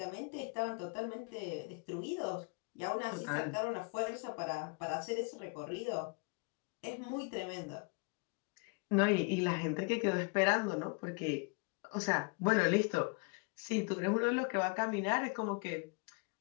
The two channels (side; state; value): right; quieter; 33.2 dB